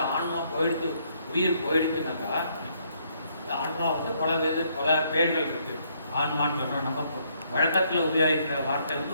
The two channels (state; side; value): inverted; both; correlation -0.70